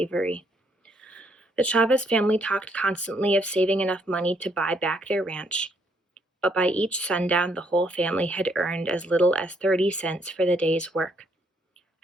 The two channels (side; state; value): both; normal; correlation 0.70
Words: The Chavez family talked constantly of saving enough money to buy back their ranch, but by each sundown the whole family had earned as little as 30 cents for the day's work.